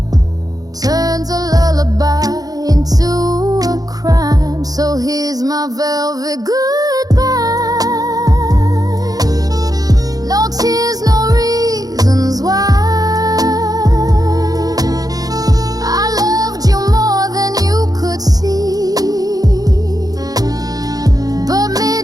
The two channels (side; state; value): left; late; 0.18 ms